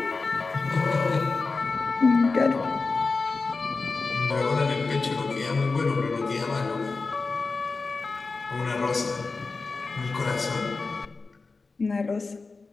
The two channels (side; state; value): right; quieter; 4.0 dB